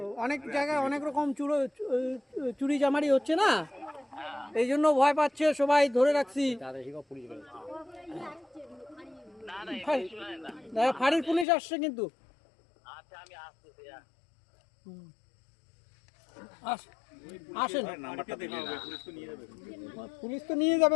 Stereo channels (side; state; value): right; drops out; at 11.5 s